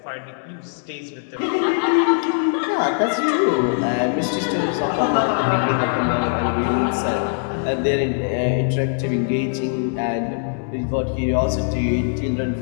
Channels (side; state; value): right; silent; digital silence